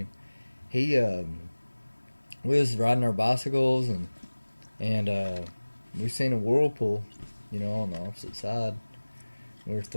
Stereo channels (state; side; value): inverted; both; correlation -1.00